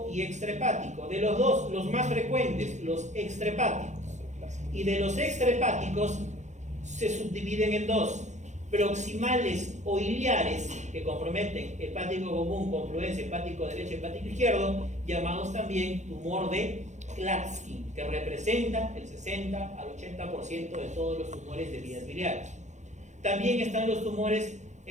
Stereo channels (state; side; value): late; left; 0.34 ms